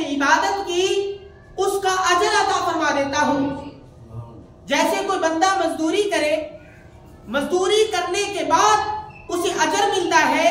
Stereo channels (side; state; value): both; identical; correlation 1.00